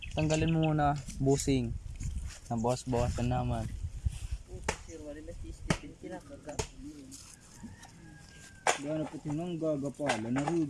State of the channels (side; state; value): both; identical; correlation 1.00